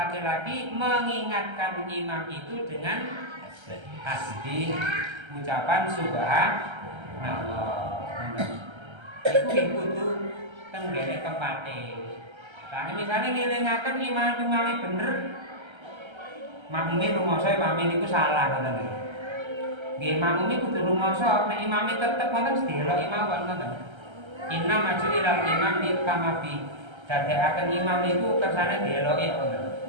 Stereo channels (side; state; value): left; late; 1.3 ms